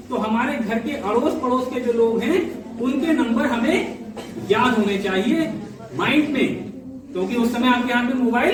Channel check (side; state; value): both; identical; correlation 1.00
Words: तो हमारे घर के अड़ोस पड़ोस के जो लोग हैं उनके नंबर हमें याद होने चाहिए माइंड में। क्योंकि उस समय आपके हाथ में